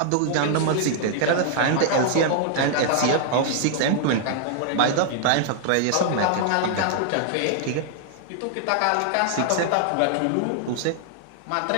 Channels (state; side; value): different; both; correlation 0.00